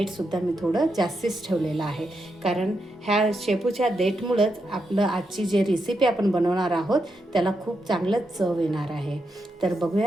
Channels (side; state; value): both; normal; correlation 0.84